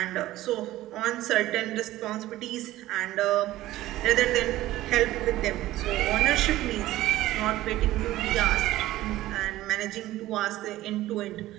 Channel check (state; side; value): quieter; left; 15.7 dB